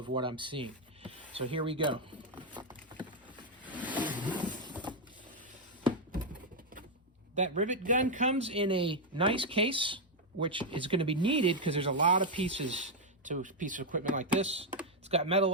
what I'm seeing. So here we go. That rivet gun comes in a nice case, which is going to be needed because there's a lot of pieces to a piece of equipment like this. It's got metal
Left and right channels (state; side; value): normal; both; correlation 0.01